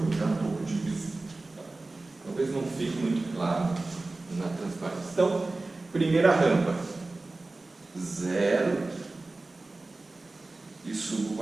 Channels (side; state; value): left; quieter; 3.2 dB